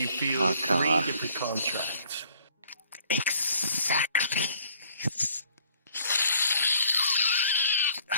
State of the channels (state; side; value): inverted; both; correlation -0.60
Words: feel caw-caw. 3 different contracts. Exactly.